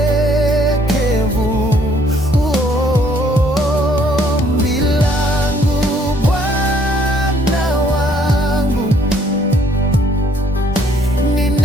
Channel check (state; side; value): normal; both; correlation 0.64